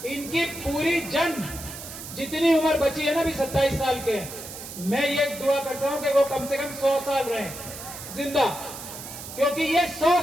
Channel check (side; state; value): right; noise; hiss, 11 dB below the sound